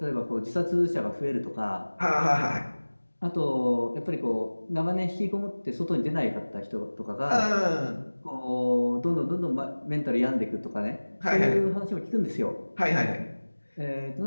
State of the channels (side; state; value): both; inverted; correlation -1.00